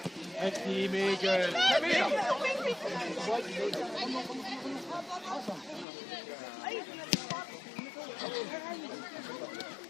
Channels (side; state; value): right; drops out; at 5.9 s